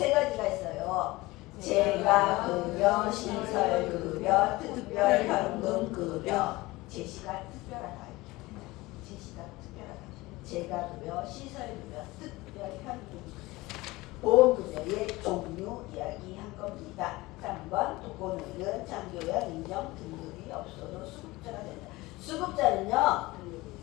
가지가 있어요. 재가급여, 시설급여, 특별현금급여. 제시가 특별하다. 제시가 특별하다. 재가급여, 시설급여, 특별현금급여. 보험급여의 종류 이야기한 겁니다. 3번 독거노인은 장교양 인정 등급이 없어도 수급자가 된다. 수급자는요,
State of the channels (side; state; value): right; quieter; 20.6 dB